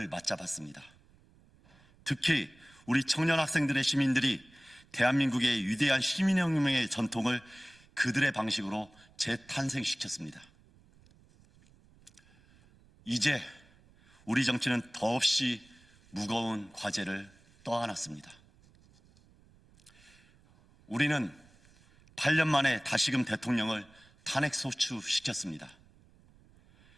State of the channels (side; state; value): right; noise; rumble, 28 dB below the sound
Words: 맞잡았습니다. 특히 우리 청년 학생들의 시민들이 대한민국의 위대한 시민혁명의 전통을 그들의 방식으로 재탄생시켰습니다. 이제 우리 정치는 더없이 무거운 과제를 떠안았습니다. 우리는 8년 만에 다시금 대통령을 탄핵소추시켰습니다.